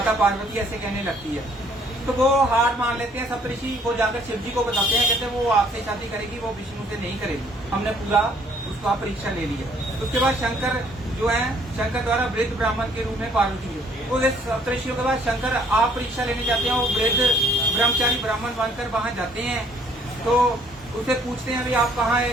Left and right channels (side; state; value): both; normal; correlation 0.62